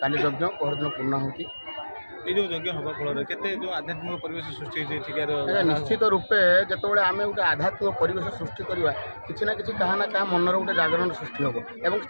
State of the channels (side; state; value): both; inverted; correlation -1.00